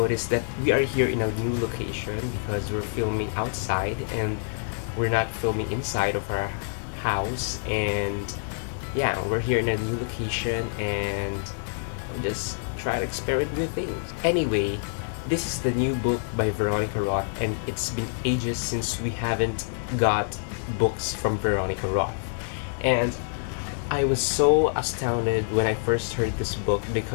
that we are here in a new location because we're filming outside and we're not filming inside of our house, and yeah, we're here in a new location and just try to experiment with things. Anyway, this is the new book by Veronica Roth, and it's been ages since we haven't got books from Veronica Roth. And I was so astounded when I first heard this book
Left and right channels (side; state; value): right; silent; digital silence